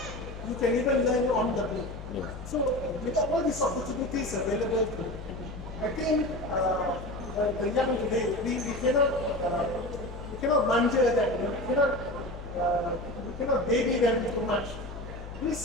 You can even learn on the go. Yeah. So with all these opportunities available to you, I think the young today, we cannot manja that, we cannot baby them too much.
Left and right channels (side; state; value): left; noise; hum, 11 dB below the sound